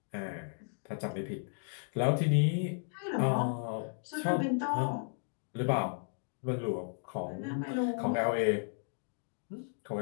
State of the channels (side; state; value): right; silent; digital silence